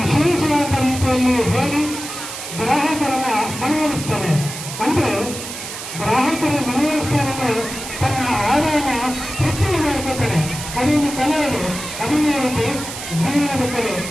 ರೀತಿಯಲ್ಲಿ ಹೇಳಿ ಗ್ರಾಹಕರನ್ನ ಮನವೊಲಿಸ್ತಾನೆ. ಅಂದ್ರೆ ಗ್ರಾಹಕರ ಮನವೊಲಿಸ್ತಾನೆ, ತನ್ನ ಆದಾಯನ ಹೆಚ್ಚಿಗೆ ಮಾಡ್ಕೊತಾನೆ. ಅದೊಂದು ಕಲೆ. ಅದನ್ನೇ ಒಂದು ಜೀವನದ ಕಲೆ.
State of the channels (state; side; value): noise; right; hiss, 9 dB below the sound